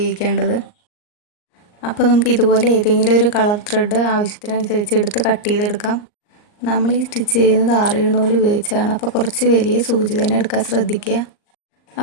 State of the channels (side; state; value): right; late; 39 ms